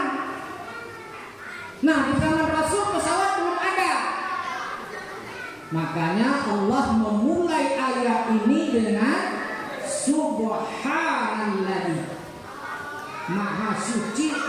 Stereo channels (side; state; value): both; identical; correlation 1.00